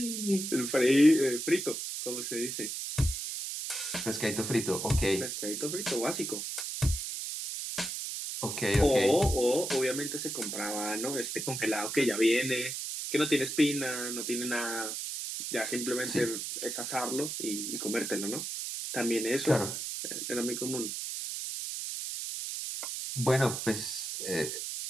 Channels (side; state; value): right; noise; hiss, 4 dB below the sound